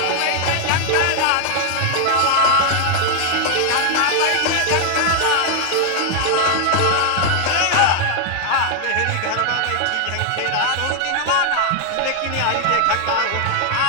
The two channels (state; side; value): different; both; correlation 0.00